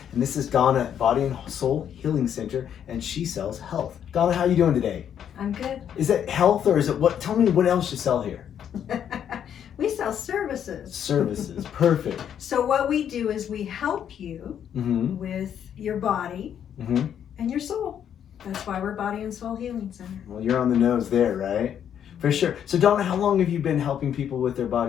and this is Donna at Body and Soul Healing Center, and she sells health. Donna, how are you doing today? I'm good. Is it health or is it what? Tell me what else you sell here. We sell services. Services, perfect. So what we do is we help you with your body and your soul. That's why we're Body and Soul Healing Center. Well, you're on the nose there, right? For sure. So Donna, how long have you been helping people with their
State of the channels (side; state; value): right; quieter; 9.1 dB